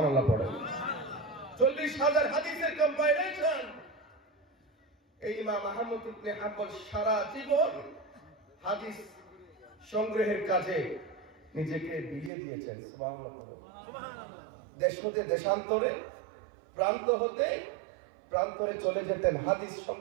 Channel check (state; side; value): drops out; left; at 12.3 s